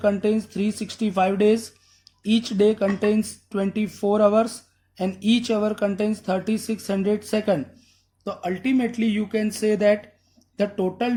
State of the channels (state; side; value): identical; both; correlation 1.00